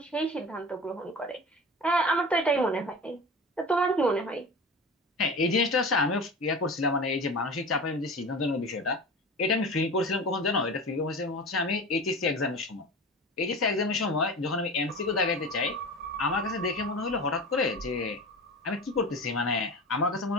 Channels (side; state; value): both; normal; correlation 0.32